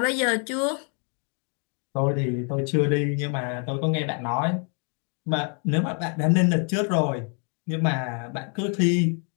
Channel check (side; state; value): right; quieter; 40.0 dB